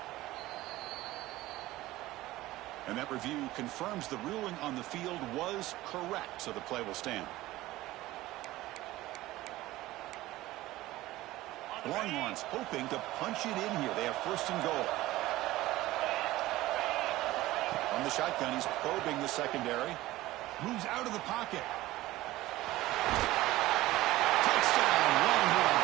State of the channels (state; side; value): quieter; left; 17.1 dB